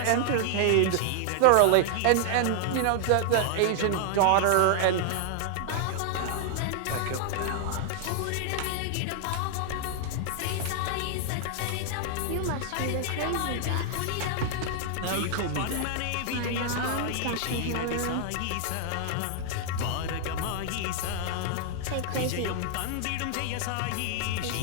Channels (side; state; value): both; different; correlation 0.00